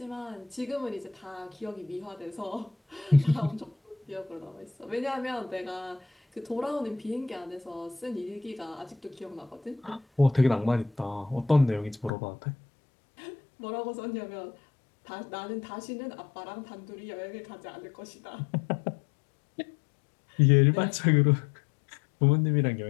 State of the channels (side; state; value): right; drops out; at 12.1 s